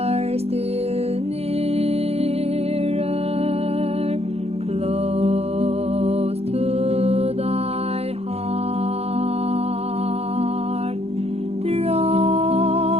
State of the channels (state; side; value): late; left; 0.30 ms